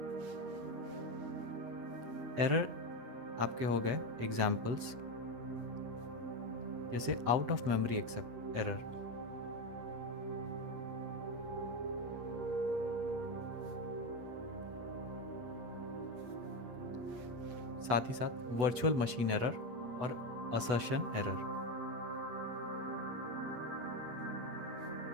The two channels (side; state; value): left; late; 8.1 ms